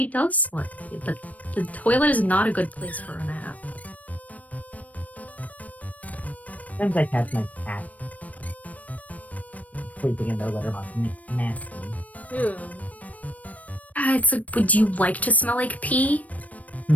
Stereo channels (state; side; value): late; right; 0.070 ms